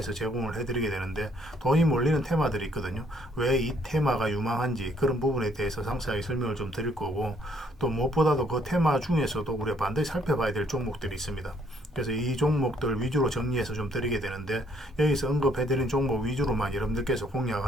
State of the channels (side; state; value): both; normal; correlation 0.66